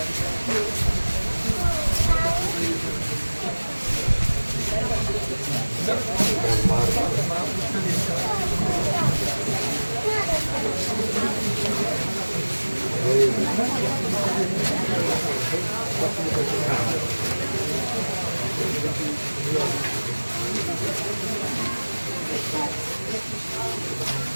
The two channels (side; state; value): both; inverted; correlation -1.00